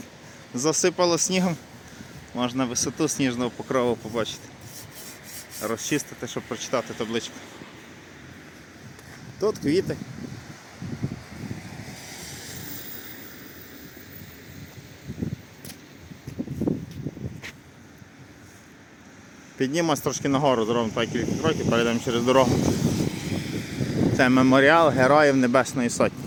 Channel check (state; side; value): identical; both; correlation 1.00